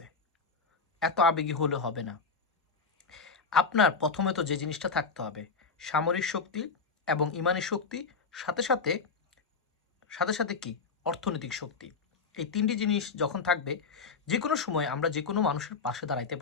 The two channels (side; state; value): right; quieter; 4.8 dB